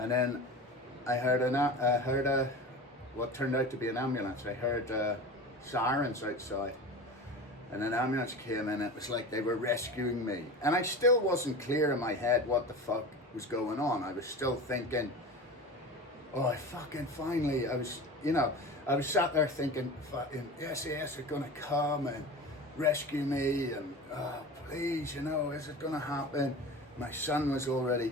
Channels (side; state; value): both; normal; correlation 0.32